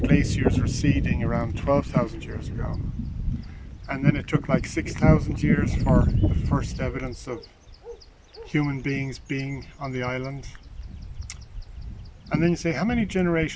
glaciers receding around 12,000 years ago, and then it took like 6,000 years for the first evidence of human beings being on the island. And then you say, how many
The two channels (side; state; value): both; identical; correlation 1.00